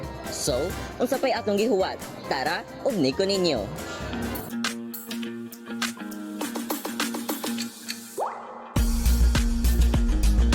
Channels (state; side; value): identical; both; correlation 1.00